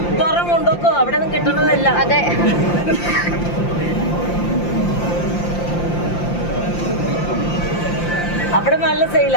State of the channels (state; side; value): late; right; 5.8 ms